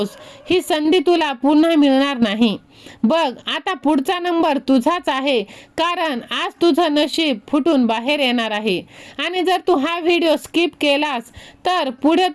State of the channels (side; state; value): both; identical; correlation 1.00